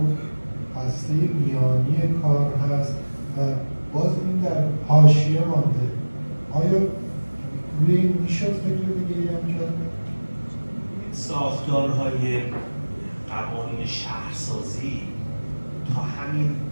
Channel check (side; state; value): both; inverted; correlation -1.00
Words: هسته میانی کار هست و باز این در حاشیه مانده. آیا روی این میشد فکر دیگه هم کرد؟ ساختارهای قوانین شهرسازی تا